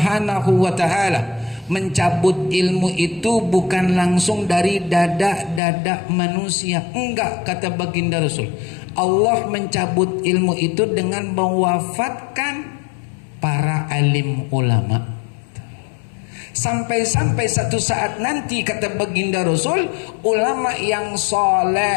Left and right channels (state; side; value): drops out; right; at 5.6 s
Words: wa taala mencabut ilmu itu bukan langsung dari dada manusia. Enggak, kata baginda Rasul. Allah mencabut ilmu itu dengan mewafatkan para alim ulama. Sampai-sampai satu saat nanti, kata baginda Rasul, ulama yang